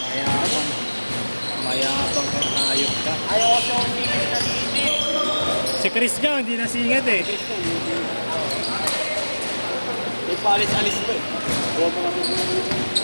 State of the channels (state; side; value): inverted; both; correlation -1.00